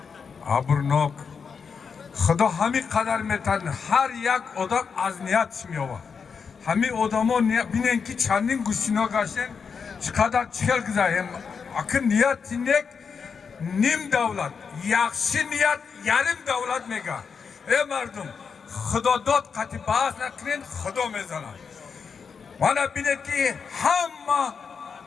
абрнок. Худо ҳамин қадар метавонад ҳар як одам аз ниятш меёбад. Ҳамин одамон бинен ки чандин гӯштино гаштен, чӣ қадар чӣ хел гузароем. Акин нияти нек ним давлат, яхши ният ярим давлат мега. Э мардум, Худо дод қати баҳс накунед, Худо мезанад. Мана бинед ки ҳама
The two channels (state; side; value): quieter; right; 5.9 dB